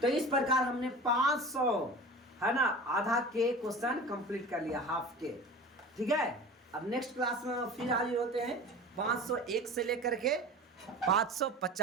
तो इस प्रकार हमने 500 है ना आधा के क्वेश्चन कंप्लीट कर लिया, हाफ के, ठीक है। अब नेक्स्ट क्लास में फिर हाजिर होते हैं 501 से लेकर के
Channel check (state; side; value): normal; both; correlation 0.36